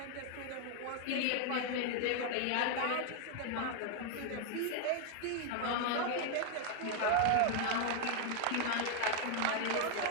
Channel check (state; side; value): different; both; correlation 0.00